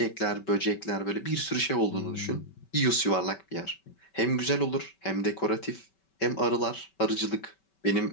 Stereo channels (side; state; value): right; late; 5.2 ms